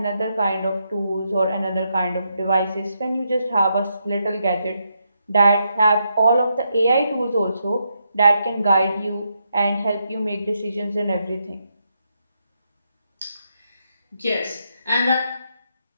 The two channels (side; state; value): both; inverted; correlation -0.81